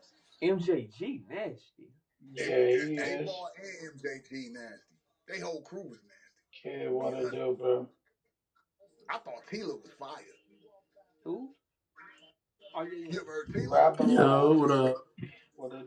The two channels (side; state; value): both; identical; correlation 1.00